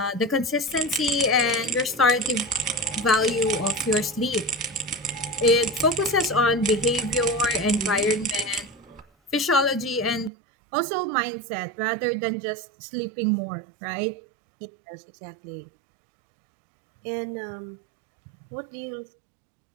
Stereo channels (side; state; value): left; drops out; at 10.3 s